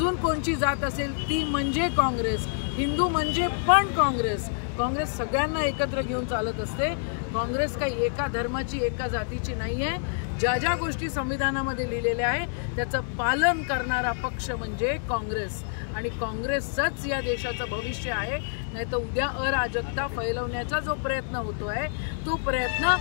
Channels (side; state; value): right; silent; digital silence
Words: कोणची जात असेल ती म्हणजे काँग्रेस, हिंदू म्हणजे पण काँग्रेस. काँग्रेस सगळ्यांना एकत्र घेऊन चालत असते. काँग्रेस काही एका धर्माची, एका जातीची नाही आहे. ज्या ज्या गोष्टी संविधानामध्ये लिहिलेल्या आहे त्याचं पालन करणारा पक्ष म्हणजे काँग्रेस आणि काँग्रेसच या देशाचं भविष्य आहे. नाही तर उद्या अराजकता फैलवण्याचा जो प्रयत्न होतो आहे तो प्रयत्न